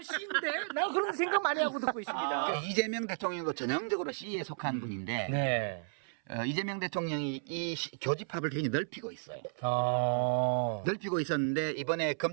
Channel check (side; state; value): left; silent; 56 dB below the other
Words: C인데? 나 그런 생각 많이 하고 듣고 있습니다. 그 이재명 대통령도 전형적으로 C에 속한 분인데 네. 이재명 대통령이 이 교집합을 굉장히 넓히고 있어요. 넓히고 있었는데 이번에